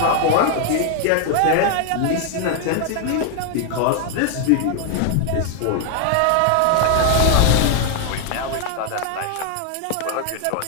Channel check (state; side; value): different; both; correlation 0.00